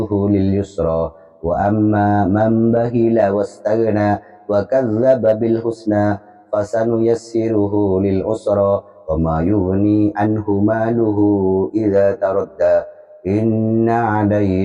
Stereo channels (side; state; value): both; identical; correlation 1.00